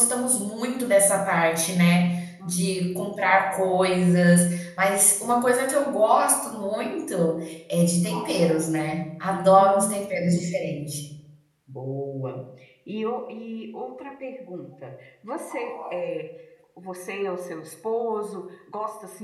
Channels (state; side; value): identical; both; correlation 1.00